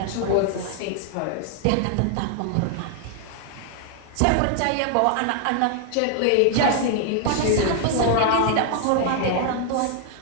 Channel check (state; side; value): different; both; correlation 0.00